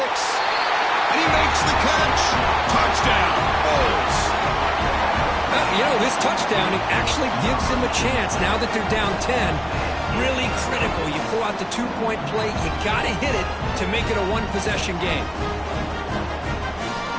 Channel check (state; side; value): identical; both; correlation 1.00